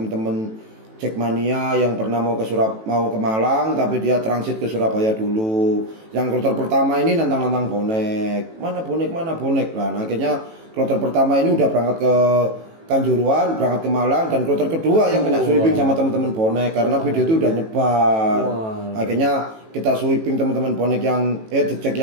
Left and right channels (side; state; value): left; late; 18 ms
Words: Jackmania yang pernah mau ke Malang tapi dia transit ke Surabaya dulu. Yang kloter pertama ini nantang bonek. Mana bonek lah. Nah, akhirnya kloter pertama ini udah berangkat ke Kanjuruhan, berangkat ke Malang, dan kloter kedua yang kena sweeping sama teman-teman bonek karena video itu udah nyebar. Akhirnya kita sweeping teman-teman bonek yang dicek